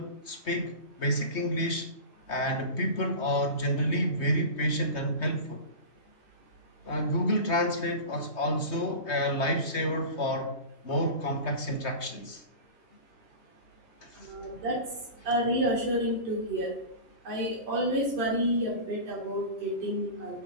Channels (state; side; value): late; right; 3.2 ms